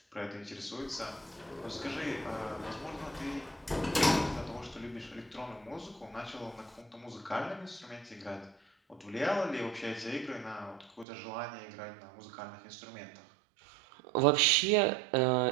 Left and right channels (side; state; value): left; drops out; at 11.1 s